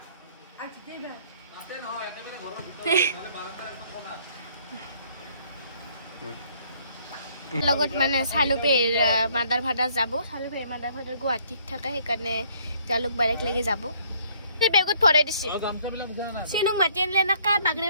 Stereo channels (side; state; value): both; inverted; correlation -0.63